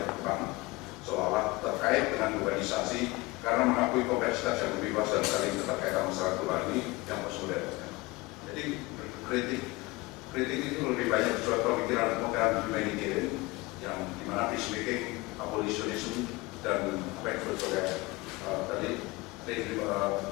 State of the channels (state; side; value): quieter; right; 22.5 dB